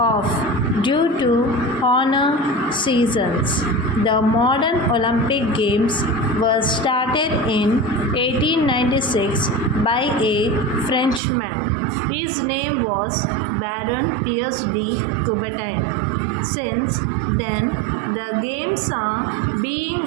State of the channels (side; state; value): left; drops out; at 11.2 s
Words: due to honor seasons. The modern Olympic Games were started in 1896 by a Frenchman. His name was Baron Pierre de Coubertin. Since then, the games are being